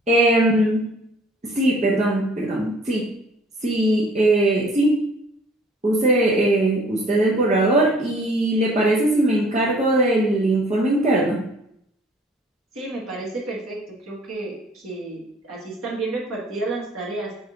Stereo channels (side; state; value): both; normal; correlation 0.54